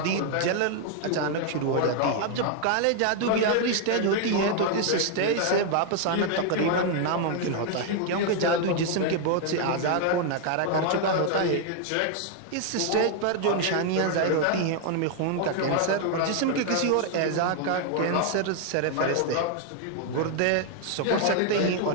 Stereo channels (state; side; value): different; both; correlation 0.00